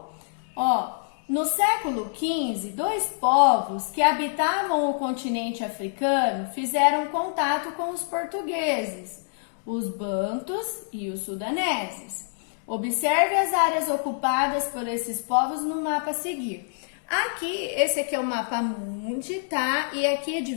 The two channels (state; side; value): silent; right; digital silence